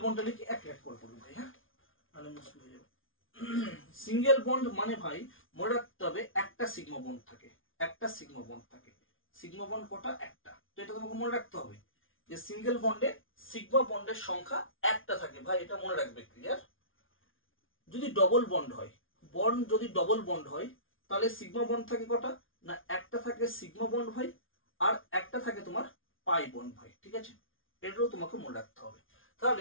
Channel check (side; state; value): right; late; 0.58 ms